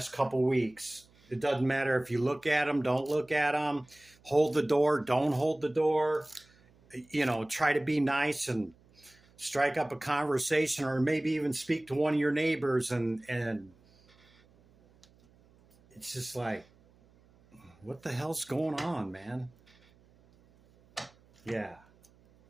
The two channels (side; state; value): right; noise; hum, 30 dB below the sound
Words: couple weeks. It doesn't matter if you look at them, don't look at them, hold the door, don't hold the door, you know, try to be nice and strike up a conversation, or maybe even speak to one of your neighbors, and it's just like, what the hell's going on, man? Yeah.